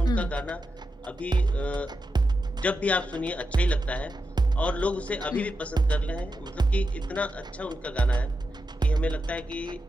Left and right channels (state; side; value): normal; both; correlation 0.88